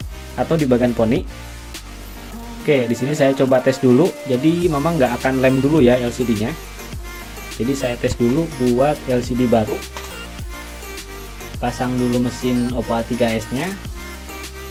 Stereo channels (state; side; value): identical; both; correlation 1.00